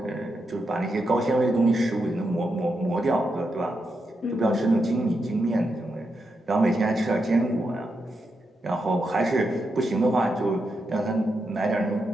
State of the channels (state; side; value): normal; both; correlation 0.85